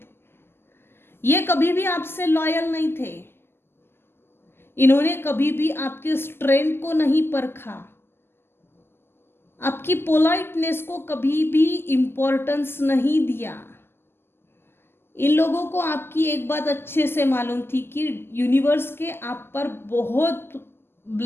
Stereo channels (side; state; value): right; late; 0.12 ms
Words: ये कभी भी आपसे लॉयल नहीं थे, इन्होंने कभी भी आपके स्ट्रेंथ को नहीं परखा, आपकी पोलाइटनेस को कभी भी इंपॉर्टेंस नहीं दिया। इन लोगों को आपकी एक बात अच्छे से मालूम थी कि यूनिवर्स के आप पर बहुत